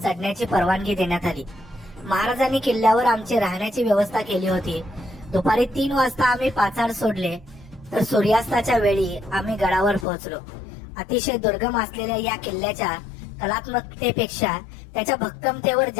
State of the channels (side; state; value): right; drops out; at 10.1 s